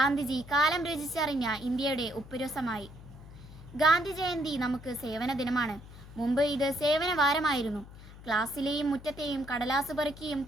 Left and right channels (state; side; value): noise; left; hum, 17 dB below the sound